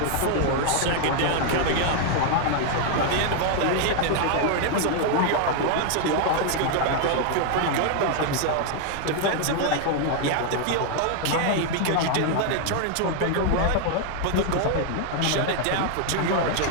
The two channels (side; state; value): both; different; correlation 0.00